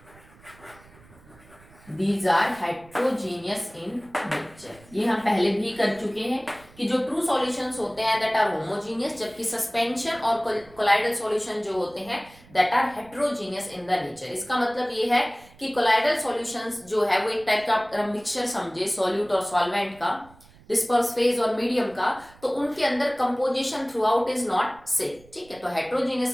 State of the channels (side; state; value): right; noise; rumble, 25 dB below the sound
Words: These are heterogeneous in nature। ये हम पहले भी कर चुके हैं कि जो ट्रू सॉल्यूशंस होते हैं दैट आर होमोजीनियस, जबकि सस्पेंशन और कोलाइडल सॉल्यूशन जो होते हैं that are heterogeneous in the nature. इसका मतलब ये है कि कोलाइडल सॉल्यूशंस जो है वो एक टाइप का मिक्सचर समझे, सॉल्यूट और सॉल्वेंट का, डिस्पर्स फेज और मीडियम का, तो उनके अंदर composition through out is not same. ठीक है, तो